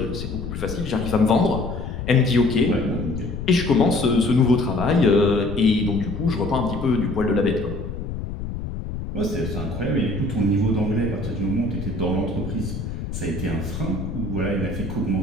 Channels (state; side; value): noise; left; rumble, 7 dB below the sound